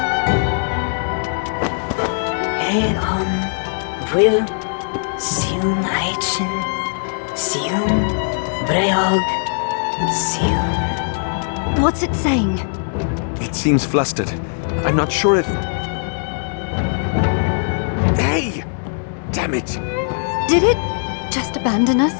Eon will Siun Aichen Siun Breog Siun. What's it saying? It seems flustered. I'm not sure if... Hey! Damn it! Did it just abandon us?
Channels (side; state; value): right; silent; 58 dB below the other